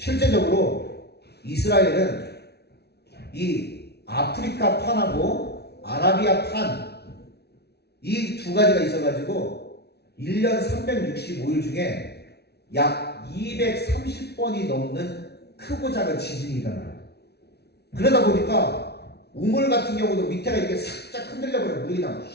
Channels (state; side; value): late; right; 0.48 ms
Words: 이스라엘은 이 아프리카 판하고 아라비아 판 이 두 가지가 있어가지고 1년 365일 중에 약 230번이 넘는 크고 작은 지진이 일어나요. 그러다 보니까 우물 같은 경우도 밑에가 이렇게 살짝 흔들려버려 물이 그냥